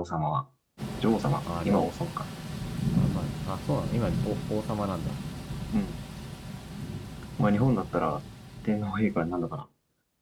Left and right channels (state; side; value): identical; both; correlation 1.00